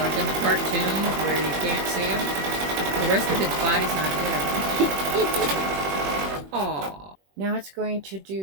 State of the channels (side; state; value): left; late; 21 ms